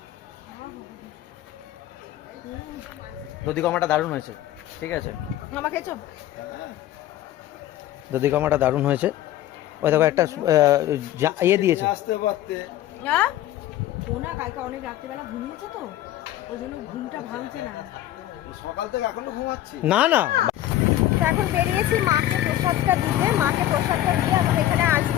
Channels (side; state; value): right; quieter; 13.5 dB